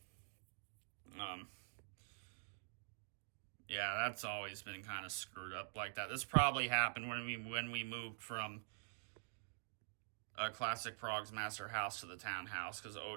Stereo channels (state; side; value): silent; left; digital silence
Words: Yeah, that's always been kind of screwed up like that. This probably happened when we moved from Classic Prog's Master House to the townhouse, because